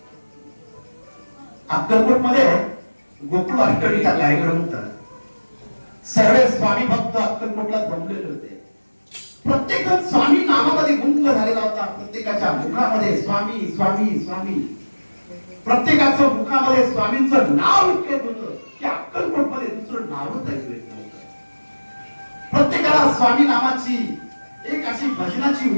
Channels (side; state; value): both; inverted; correlation -1.00